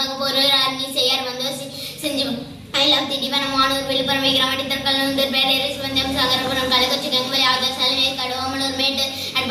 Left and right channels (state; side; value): identical; both; correlation 1.00